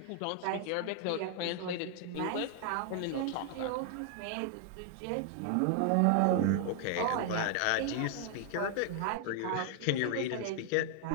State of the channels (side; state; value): both; different; correlation 0.00